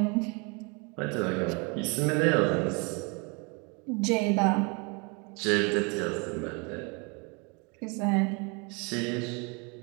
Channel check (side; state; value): left; quieter; 31.8 dB